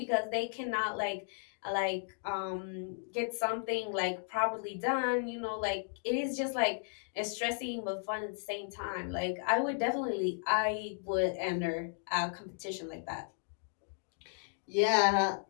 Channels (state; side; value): silent; right; digital silence